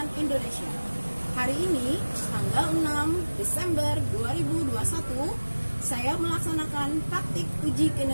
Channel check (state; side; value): inverted; both; correlation -1.00